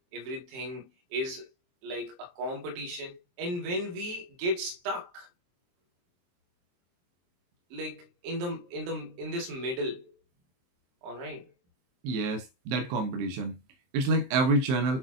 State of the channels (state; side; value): late; left; 23 ms